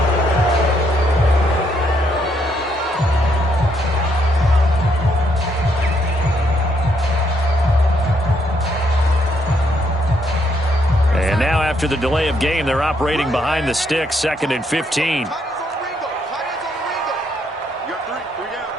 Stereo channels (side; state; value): both; normal; correlation 0.73